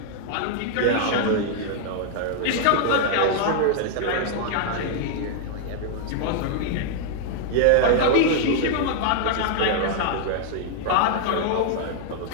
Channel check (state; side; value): different; both; correlation 0.00